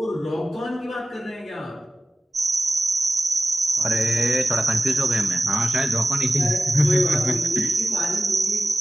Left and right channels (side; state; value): both; normal; correlation 0.95